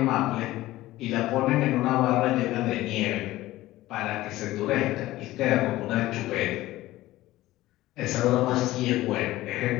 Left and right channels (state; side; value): quieter; right; 16.6 dB